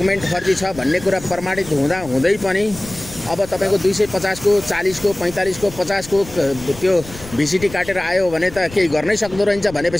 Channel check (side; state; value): left; noise; rumble, 16 dB below the sound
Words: फर्जी छ भन्ने कुरा प्रमाणित हुँदै पनि अब तपाईको 250 को 40 को 45 को 50 को त्यो भिसिटी काटेर आयो भने त केही गर्नै सक्दो रहन्छ